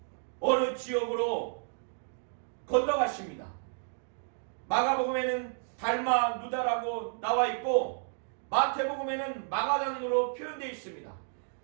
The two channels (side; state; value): left; silent; digital silence